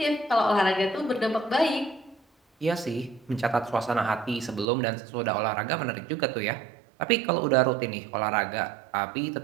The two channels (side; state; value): left; drops out; at 4.7 s